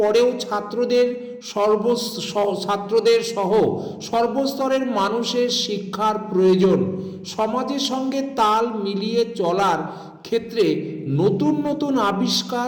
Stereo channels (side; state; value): both; identical; correlation 1.00